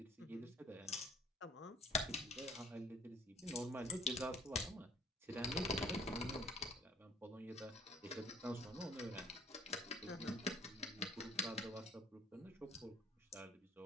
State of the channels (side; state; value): both; normal; correlation 0.54